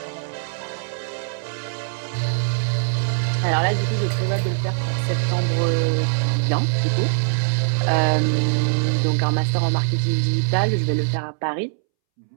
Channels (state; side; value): silent; left; 64 dB below the other